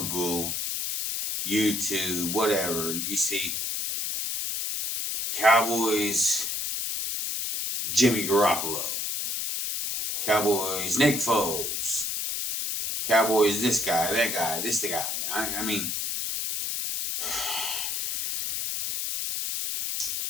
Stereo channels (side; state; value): left; noise; hiss, 2 dB below the sound